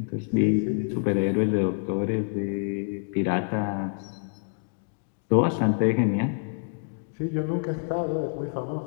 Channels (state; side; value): silent; right; digital silence